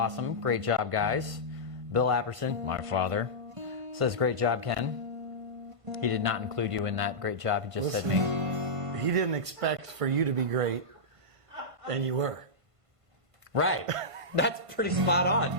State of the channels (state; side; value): late; left; 1.5 ms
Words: Great job, guys. Bill Apperson, my father, says, great job, Ken. He did not include you in that great job. He just said me. He didn't expect for you to be great, and you were. Right. That's pretty spot on.